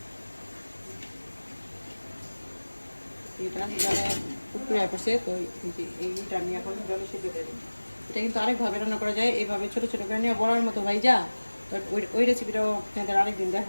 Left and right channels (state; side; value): inverted; both; correlation -1.00